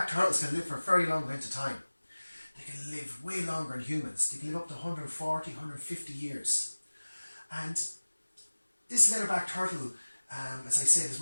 turtles can live for a very long length of time. They can live way longer than humans. They can live up to 140, 150 years. And this leatherback turtle, as I said, is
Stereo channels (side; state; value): both; inverted; correlation -1.00